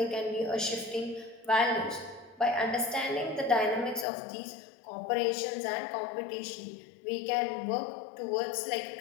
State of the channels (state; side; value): drops out; right; at 4.0 s